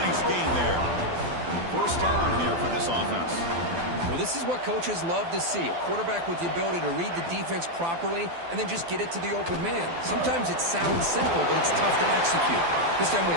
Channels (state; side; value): late; left; 12 ms